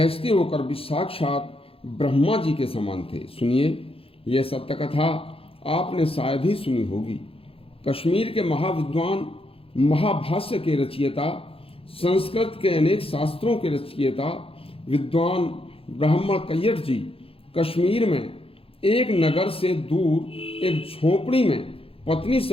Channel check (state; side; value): late; right; 0.27 ms